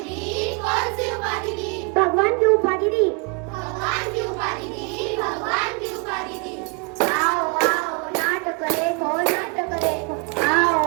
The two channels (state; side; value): quieter; left; 33.7 dB